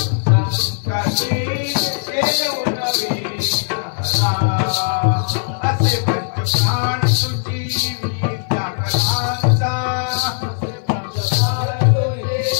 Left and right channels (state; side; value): silent; right; 55 dB below the other